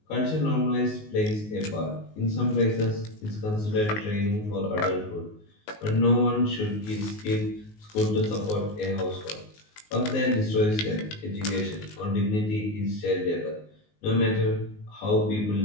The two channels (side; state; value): right; late; 19 ms